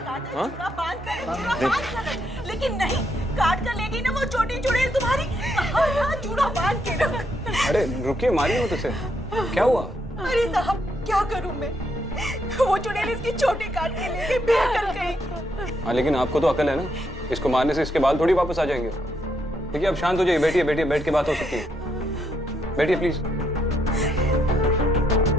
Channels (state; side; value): normal; both; correlation 0.77